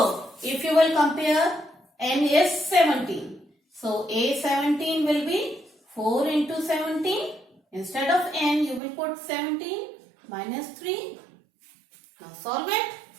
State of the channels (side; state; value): left; drops out; at 8.8 s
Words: if you will compare, n is 17. So, a17 will be 4 into 17. Instead of n, you will put 17 minus 3. Now, solve it.